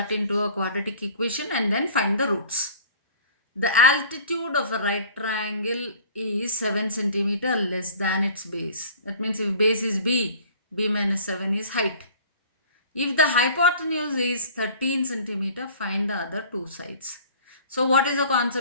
into a quadratic equation and then find the roots. The altitude of a right triangle is 7 centimeter less than its base. That means if base is b minus 7 is height. If the hypotenuse is 13 centimeter, find the other two sides. So what is the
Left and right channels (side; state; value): both; inverted; correlation -0.47